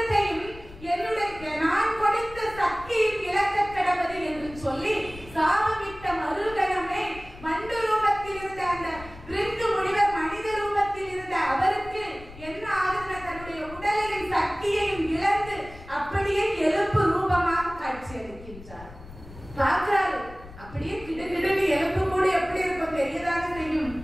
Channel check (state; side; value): noise; left; rumble, 17 dB below the sound